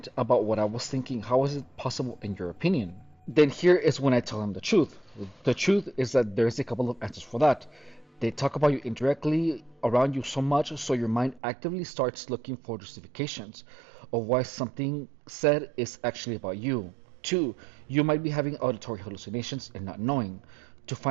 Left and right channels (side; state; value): left; drops out; at 11.4 s